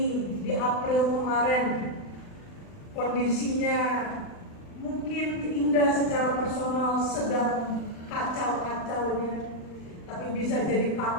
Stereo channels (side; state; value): right; late; 39 ms